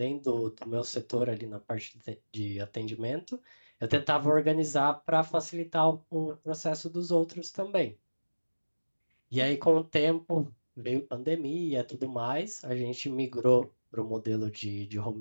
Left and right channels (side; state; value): both; inverted; correlation -1.00